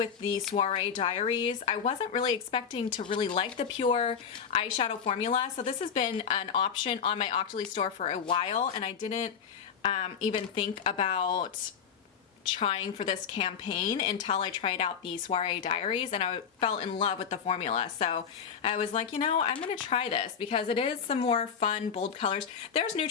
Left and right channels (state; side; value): quieter; right; 7.1 dB